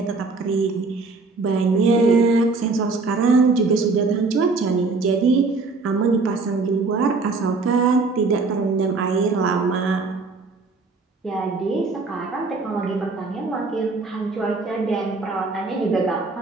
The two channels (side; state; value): left; quieter; 3.9 dB